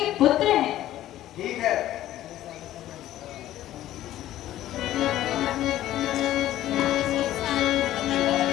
पुत्र हैं। ठीक है।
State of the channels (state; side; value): quieter; right; 13.6 dB